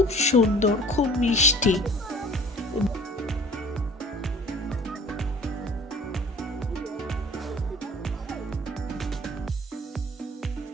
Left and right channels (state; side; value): normal; both; correlation 0.49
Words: সুন্দর, খুব মিষ্টি।